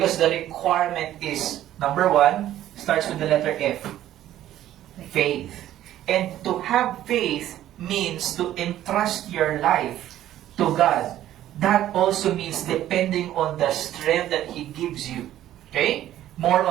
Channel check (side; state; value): left; quieter; 12.8 dB